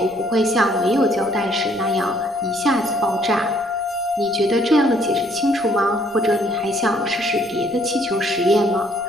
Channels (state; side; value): noise; right; rumble, 28 dB below the sound